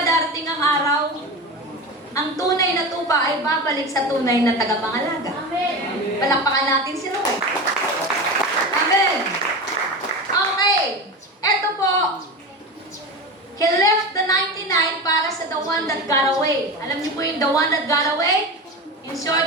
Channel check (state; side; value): normal; both; correlation 0.26